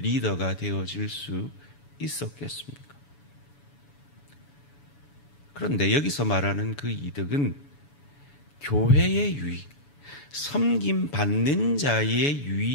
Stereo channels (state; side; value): late; right; 7.0 ms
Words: 되어질 수 있었겠습니까? 그런데 여기서 말하는 그 이득은 교회의 유익, 섬김 받는 자의